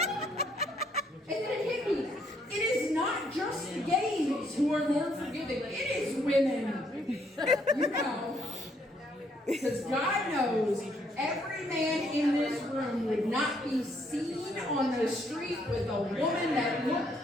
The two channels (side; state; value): both; normal; correlation 0.69